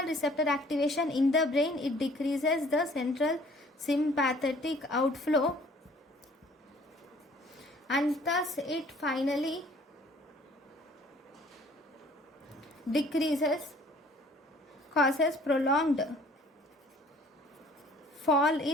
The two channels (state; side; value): normal; both; correlation 0.55